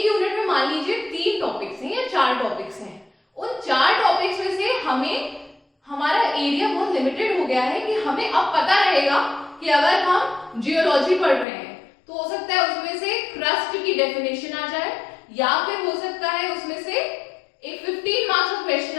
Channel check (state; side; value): drops out; right; at 11.5 s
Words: यूनिट में मान लीजिए 3 टॉपिक्स हैं या 4 टॉपिक्स हैं, उन 4 टॉपिक्स में से हमें हमारा एरिया बहुत लिमिटेड हो गया है कि हमें अब पता रहेगा कि अगर हम जियोलॉजी पढ़ रहे हैं तो हो सकता है उसमें से क्रस्ट की डेफिनेशन आ जाए, या फिर हो सकता है उसमें से एक 15 मार्क्स का